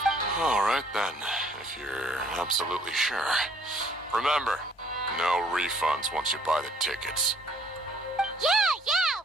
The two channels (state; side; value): normal; both; correlation 0.61